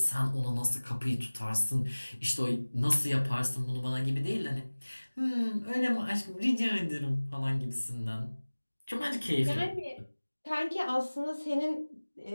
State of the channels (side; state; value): both; inverted; correlation -1.00